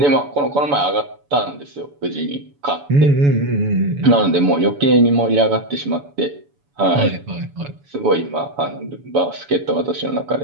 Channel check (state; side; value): late; left; 7.0 ms